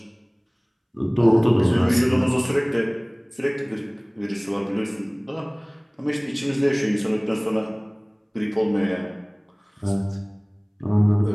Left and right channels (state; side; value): identical; both; correlation 1.00